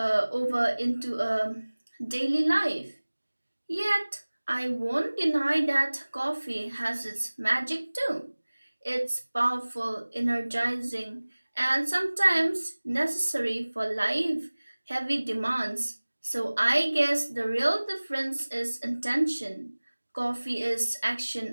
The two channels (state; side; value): inverted; both; correlation -1.00